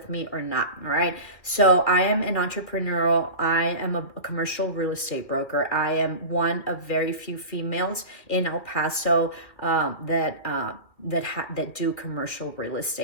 me or not, all right? So I am an entrepreneurial. I am a commercial real estate broker. I am one of very few females in El Paso that do commercial real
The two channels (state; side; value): late; right; 2.4 ms